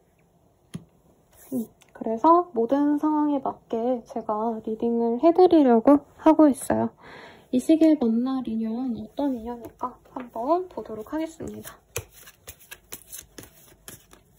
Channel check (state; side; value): identical; both; correlation 1.00